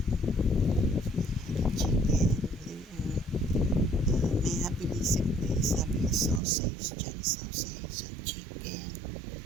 May happiness place having a sausage, John sausage, and chicken,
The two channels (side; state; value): left; drops out; at 6.4 s